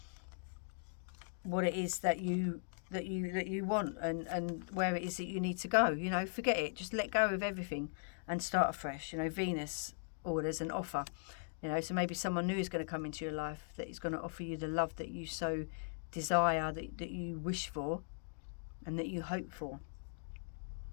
what it is that you want and where it is that you need to go. You know, forget it, just let go of everything and start afresh. You know, Venus orders an offer. You know, so maybe someone new is going to come into your life that is going to offer you the love that you so desire, that you wish for and that you hope for.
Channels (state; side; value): silent; right; digital silence